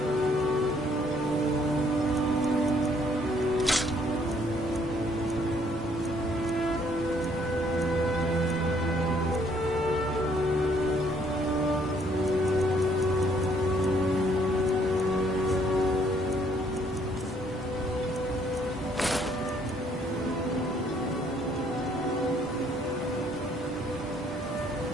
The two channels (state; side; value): normal; both; correlation 0.65